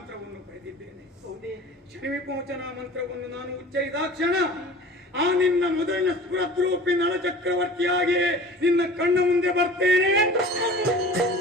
ಪಡೆದಿದ್ದೇನೆ. ಹೌದೇ? ಶನಿ ವಿಮೋಚನಾ ಮಂತ್ರವನ್ನು ನಾನು ಉಚ್ಚರಿದಾಕ್ಷಣ ಆ ನಿನ್ನ ಮೊದಲಿನ ಸ್ಫುರದ್ರೂಪಿ ನಳ ಚಕ್ರವರ್ತಿಯಾಗಿ ನಿನ್ನ ಕಣ್ಣ ಮುಂದೆ ಬರ್ತೇನೆ.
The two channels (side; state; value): both; normal; correlation 0.41